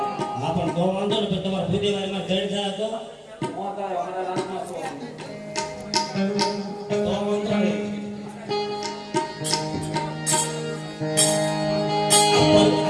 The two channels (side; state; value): both; identical; correlation 1.00